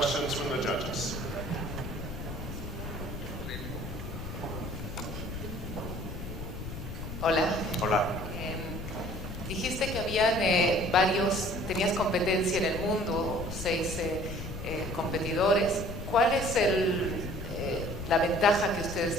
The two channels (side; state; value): left; noise; rumble, 8 dB below the sound